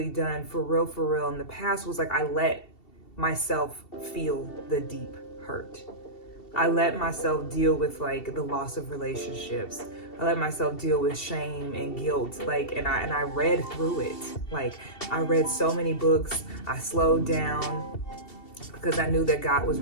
done for real in the past was I let myself feel the deep hurt. I let myself deal with the loss of relationships. I let myself deal with shame and guilt. And I read through it. I read so many books. I slowed down because I knew that God was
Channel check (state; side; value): late; right; 2.7 ms